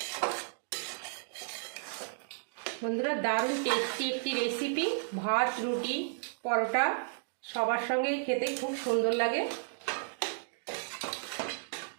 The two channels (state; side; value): silent; left; digital silence